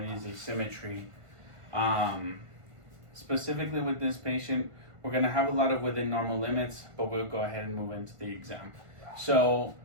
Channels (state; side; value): late; left; 1.5 ms